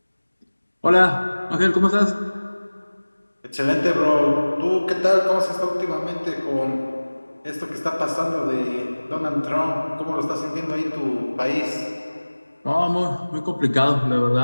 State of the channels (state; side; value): inverted; both; correlation -1.00